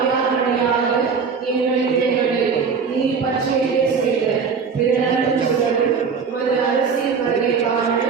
எங்களின் தேவனை நீர் பற்றியே செய்த பிறரும் உமது அரசியல் வருகைக்கான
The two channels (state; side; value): quieter; left; 5.7 dB